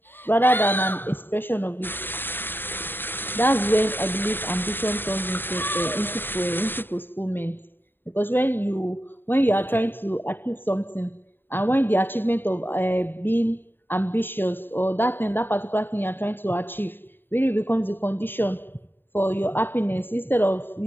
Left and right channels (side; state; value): right; late; 0.097 ms